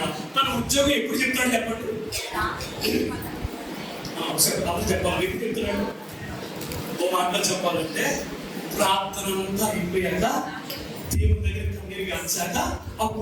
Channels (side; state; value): both; identical; correlation 1.00